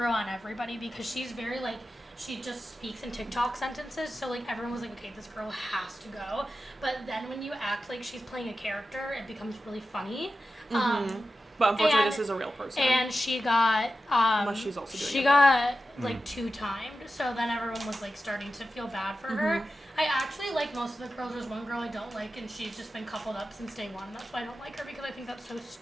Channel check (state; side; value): normal; both; correlation 0.92